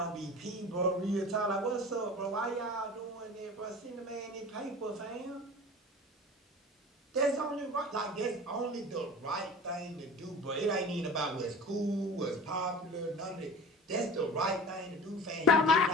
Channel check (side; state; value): both; normal; correlation 0.37